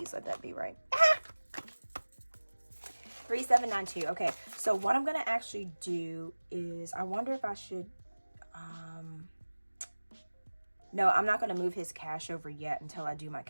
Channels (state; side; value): inverted; both; correlation -1.00